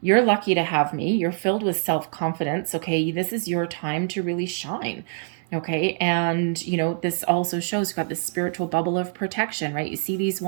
You're lucky to have me. You're filled with self-confidence, okay? This is your time to really shine, okay? And, this also shows you've got this spiritual bubble of protection, right? You see these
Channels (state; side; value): silent; left; digital silence